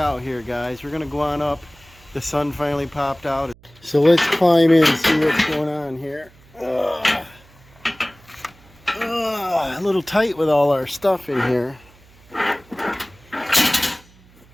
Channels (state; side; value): noise; right; hum, 27 dB below the sound